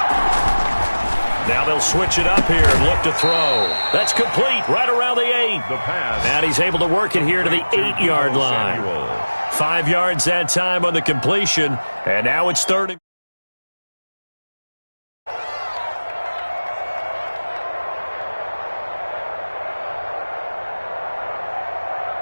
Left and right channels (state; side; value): inverted; both; correlation -1.00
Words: Now they'll switch it up here and look to throw. That's complete right around the 8. The pass. And he's able to work it here to the 8-yard line. 5 yards that time on the completion. And now it's third and